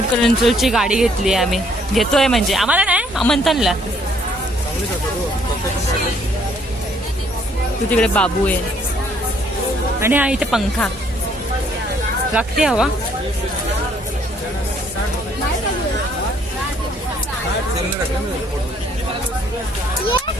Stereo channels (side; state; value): both; normal; correlation 0.65